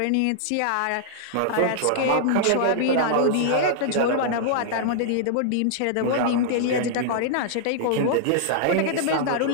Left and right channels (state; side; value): different; both; correlation -0.01